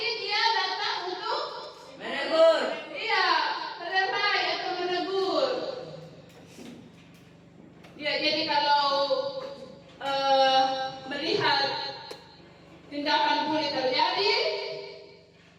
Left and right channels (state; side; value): identical; both; correlation 1.00